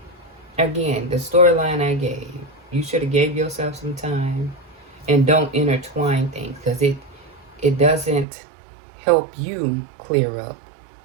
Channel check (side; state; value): left; drops out; at 8.2 s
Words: again, the storyline I gave. You should have gave yourself some time and don't intertwine things, because it doesn't help you clear up